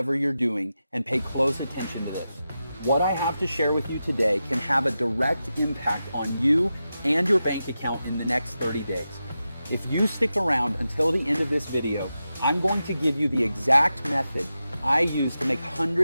you're doing and pay close attention to this. What I have to share with you today can have a direct impact on you and your bank account in the next 30 days. If you stick around until the end of this video, I'm going to give you the exact method I use to make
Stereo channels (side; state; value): both; inverted; correlation -0.91